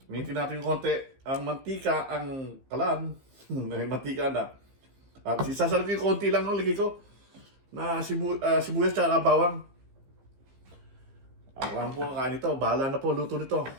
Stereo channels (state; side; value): late; left; 15 ms